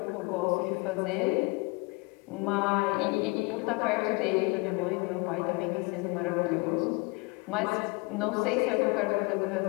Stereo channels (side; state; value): right; quieter; 28.6 dB